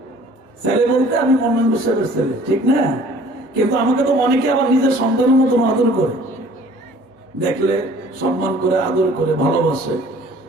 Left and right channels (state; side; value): normal; both; correlation 0.52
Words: ছেলে বলতে আমি মন্নন সাহেবের ছেলে, ঠিক না? কিন্তু আমাকে তো অনেকে আবার নিজের সন্তানের মতন আদর করে, দেখলে সম্মান করে, আদর করে, ভালোবাসে।